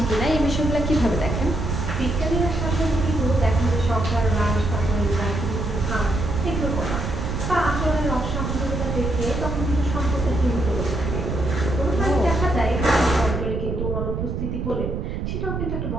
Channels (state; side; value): noise; right; rumble, 2 dB below the sound